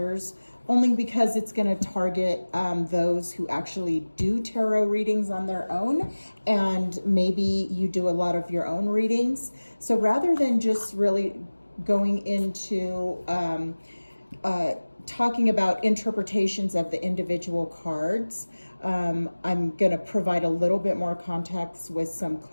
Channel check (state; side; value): inverted; both; correlation -1.00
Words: only because it's going to target those who actually do tarot readings on their own, and maybe you do a lot of your own readings. So rather than just really going into talking about interpretations of the individual cards, I'm going to provide a little bit more context with some